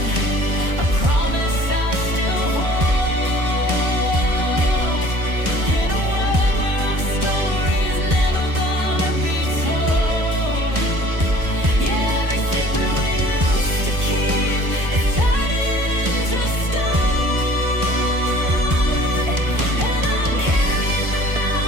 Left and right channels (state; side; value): late; left; 1.2 ms